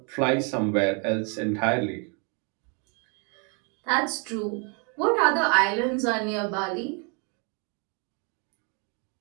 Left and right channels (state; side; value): quieter; left; 36.0 dB